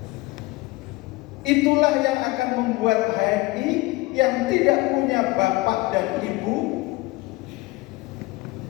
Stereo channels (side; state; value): right; quieter; 21.4 dB